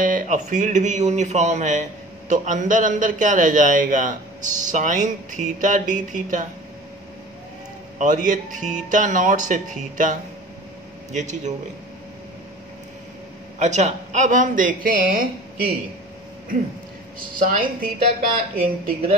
और फील्ड भी यूनिफॉर्म है, तो अंदर अंदर क्या रह जाएगा, साइन थीटा डी थीटा, और ये थीटा नॉट से थीटा, ये चीज हो गई। अच्छा, अब हम देखें कि साइन थीटा का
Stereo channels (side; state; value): both; normal; correlation 0.41